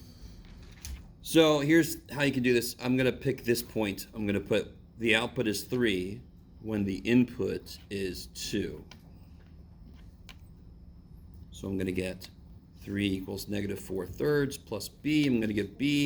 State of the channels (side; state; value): both; identical; correlation 1.00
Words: So here's how you can do this. I'm going to pick this point. I'm going to put the output is 3 when the input is 2. So I'm going to get 3 equals negative 4/3 plus b. I'm going to get